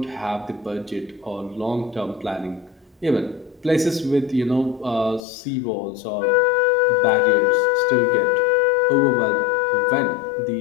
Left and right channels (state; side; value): drops out; right; at 5.2 s